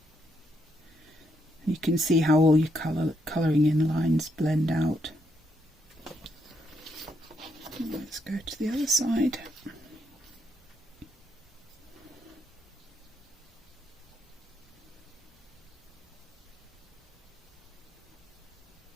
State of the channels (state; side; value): normal; both; correlation 0.77